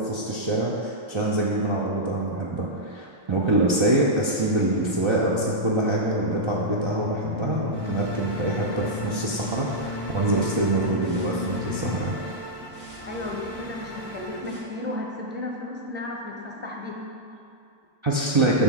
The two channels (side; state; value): left; late; 1.3 ms